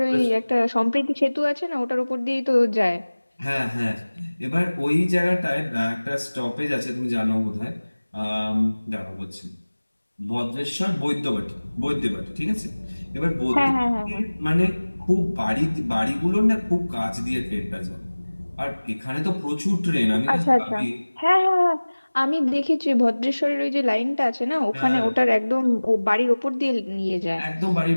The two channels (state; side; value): inverted; both; correlation -1.00